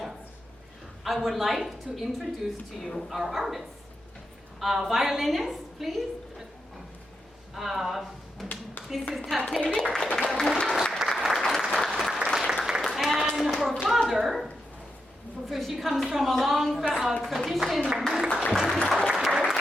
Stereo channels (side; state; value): both; normal; correlation 0.85